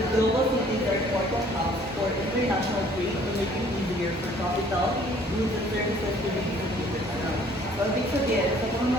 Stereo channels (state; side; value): normal; both; correlation 0.57